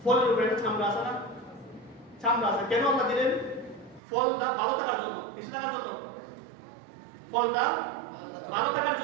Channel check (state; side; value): drops out; left; at 4.0 s